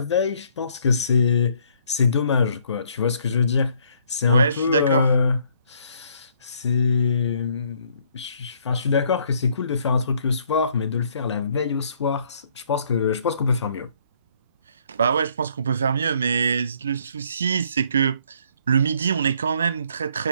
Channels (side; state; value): both; inverted; correlation -0.65